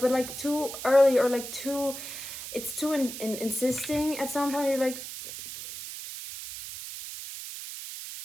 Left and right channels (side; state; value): right; noise; hiss, 9 dB below the sound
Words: like too early, or like it's too insisting at some point. You're like,